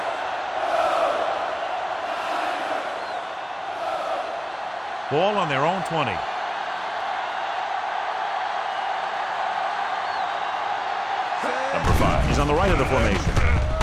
Ball on their own 20. Number 5. He's on the right of the formation.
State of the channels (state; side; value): identical; both; correlation 1.00